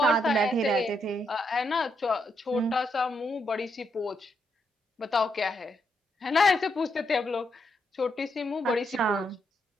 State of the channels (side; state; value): both; normal; correlation 0.79